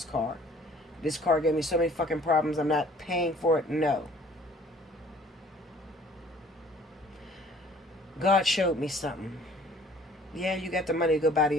car. This car gave me so many fucking problems. I'm not paying for it. No. God showed me something. Yeah, you got the money to go buy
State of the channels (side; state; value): both; normal; correlation 0.54